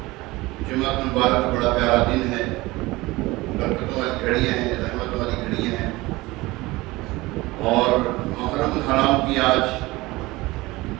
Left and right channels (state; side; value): quieter; left; 20.6 dB